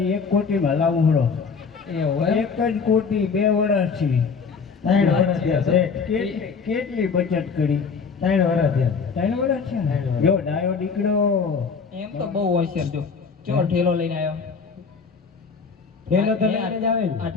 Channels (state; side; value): quieter; right; 5.5 dB